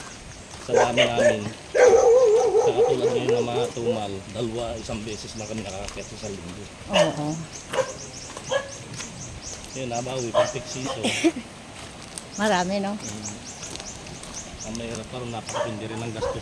sa dami namin, sa katulad ngayon na mga tumal, isang beses lang kami nakakiyat sa linggo. Oo. Yun, nabawi, pag piksito. Marami, no? Ang mahirap pa rin, napakapindi rin ang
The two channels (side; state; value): both; identical; correlation 1.00